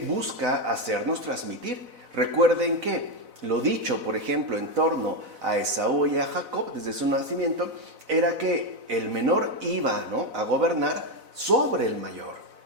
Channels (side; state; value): left; late; 4.0 ms